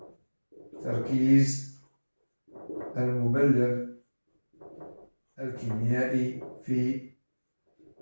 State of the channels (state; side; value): inverted; both; correlation -1.00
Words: تركيز المبلغ الكيميائي في